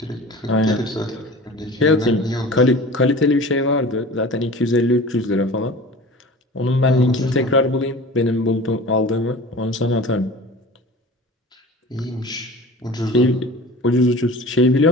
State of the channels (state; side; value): normal; both; correlation 0.39